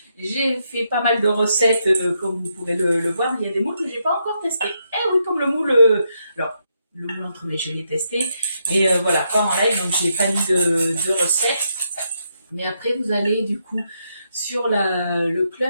J'ai fait pas mal de recettes, comme vous pouvez le voir, mais il y a des moules que j'ai pas encore testés. Eh oui, comme le moule. Alors, le moule entremets, je l'ai testé, mais voilà, pas en live, donc j'ai pas mis de recettes. Mais après, vous allez du coup sur le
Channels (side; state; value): both; inverted; correlation -0.80